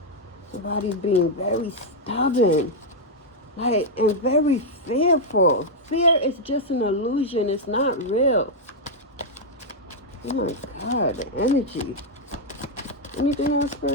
Somebody's being very stubborn, and very fearful. Fear is just an illusion. It's not real. Oh my God, the energy. Anything else,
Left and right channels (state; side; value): normal; both; correlation -0.02